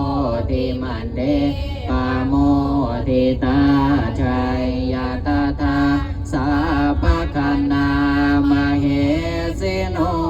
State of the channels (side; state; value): both; identical; correlation 1.00